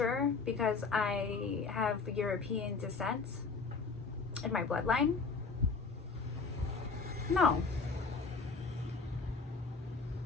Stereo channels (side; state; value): right; quieter; 4.5 dB